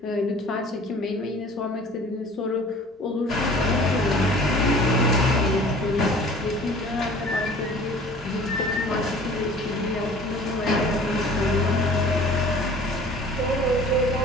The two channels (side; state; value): both; normal; correlation 0.47